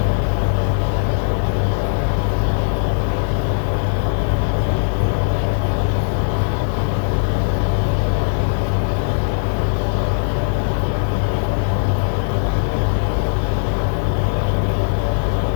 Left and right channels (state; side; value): silent; right; digital silence